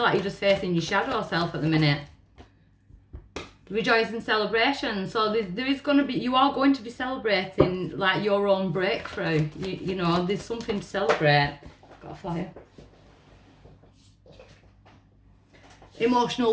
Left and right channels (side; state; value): both; identical; correlation 1.00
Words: like you're just facing your shadow self at the minute. Rejoice and celebration. So there is going to be, you are going to be celebrating like your own breakthrough. You know, there's something to celebrate. Got a flyer.